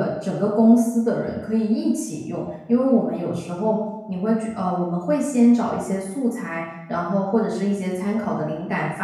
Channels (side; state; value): both; identical; correlation 1.00